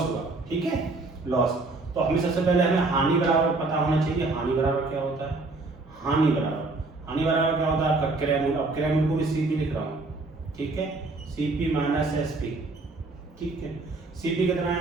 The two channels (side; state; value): left; quieter; 3.3 dB